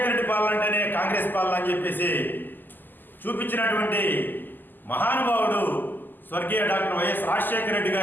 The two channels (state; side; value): late; right; 0.089 ms